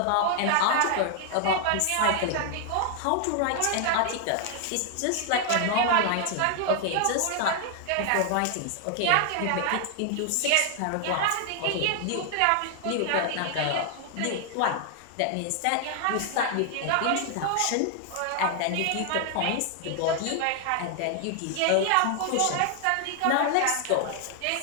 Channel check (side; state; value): both; different; correlation 0.00